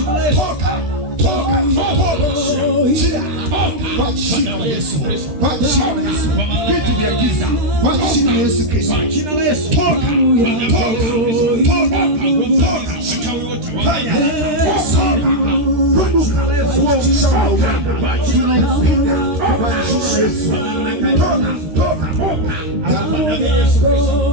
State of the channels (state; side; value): late; left; 13 ms